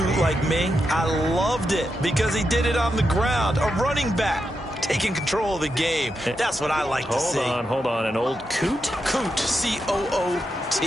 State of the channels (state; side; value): normal; both; correlation 0.86